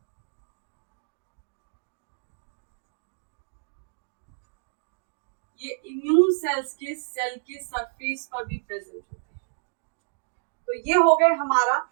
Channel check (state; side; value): silent; left; digital silence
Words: ये इम्यून सेल्स के सेल के सरफेस पर भी प्रेजेंट होते हैं। तो ये हो गए हमारा